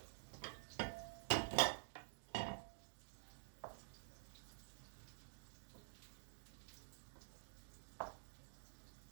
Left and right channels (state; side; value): silent; left; digital silence